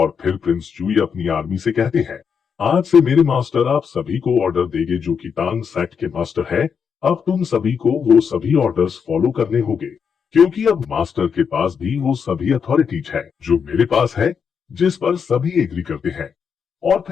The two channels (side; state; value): right; quieter; 6.6 dB